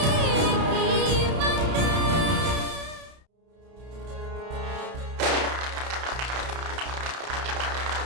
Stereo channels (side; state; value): left; late; 31 ms